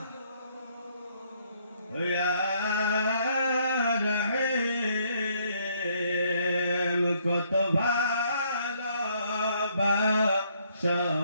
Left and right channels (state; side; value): inverted; both; correlation -0.68